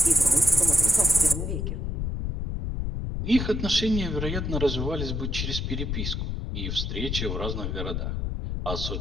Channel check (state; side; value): noise; left; rumble, 2 dB below the sound